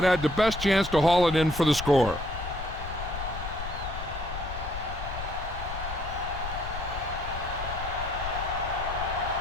had the best chance to haul it in for the score.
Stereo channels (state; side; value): noise; left; rumble, 8 dB below the sound